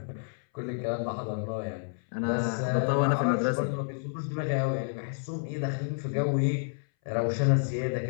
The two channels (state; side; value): silent; right; 58 dB below the other